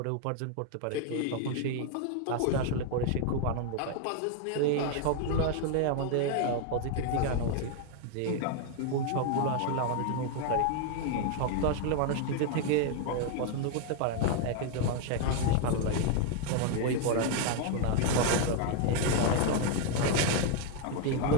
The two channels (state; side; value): different; both; correlation 0.00